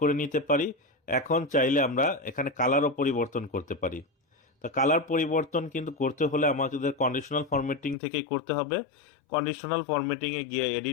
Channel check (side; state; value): right; drops out; at 8.0 s